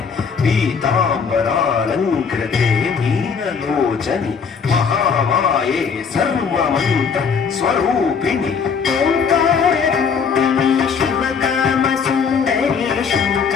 పీతాంబరాలంకృతే మీనలోచని మహామాయే సర్వమంత స్వరూపిణి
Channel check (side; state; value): right; quieter; 6.0 dB